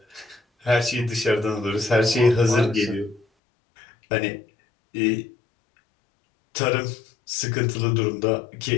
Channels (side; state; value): right; drops out; at 3.2 s